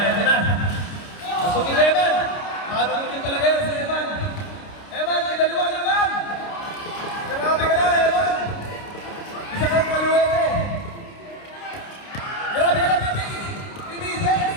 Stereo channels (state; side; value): late; right; 29 ms